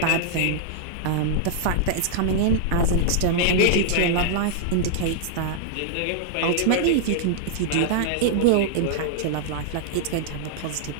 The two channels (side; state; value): both; different; correlation -0.01